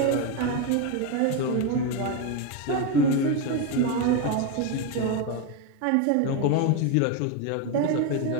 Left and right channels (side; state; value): both; different; correlation 0.03